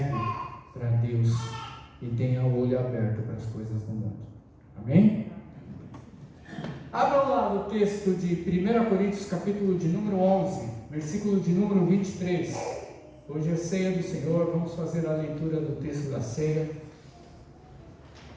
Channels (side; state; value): both; identical; correlation 1.00